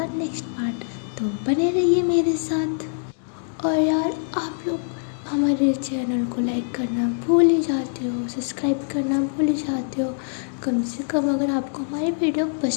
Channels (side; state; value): right; silent; digital silence